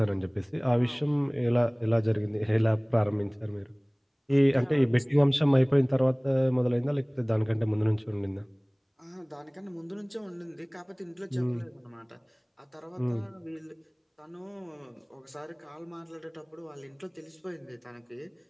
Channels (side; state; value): both; identical; correlation 1.00